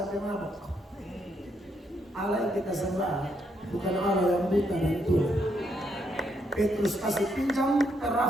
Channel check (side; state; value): both; normal; correlation 0.76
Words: mabuk. Allah yang kita sembah bukan Allah yang buta dan tua. Petrus kasih pinjam